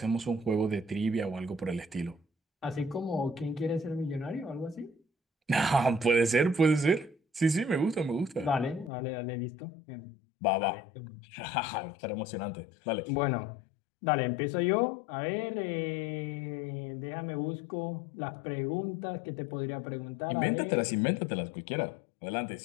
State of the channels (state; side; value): drops out; right; at 8.9 s